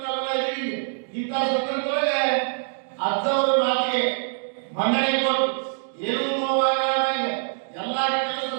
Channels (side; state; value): left; silent; digital silence